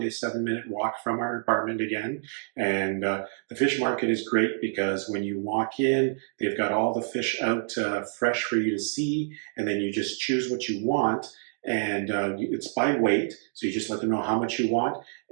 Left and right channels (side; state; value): left; silent; digital silence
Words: 7 minute walk from our apartment again. And the fish market is great because when you walk in, they've got all the fish out fresh for you to see, and then you just choose what you want. And it's by weight, so you just let them know how much you want.